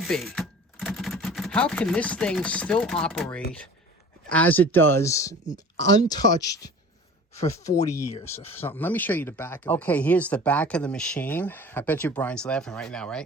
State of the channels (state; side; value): normal; both; correlation 0.43